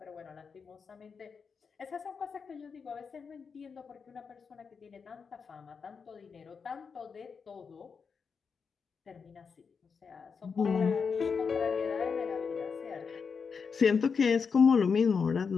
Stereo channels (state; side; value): quieter; right; 5.7 dB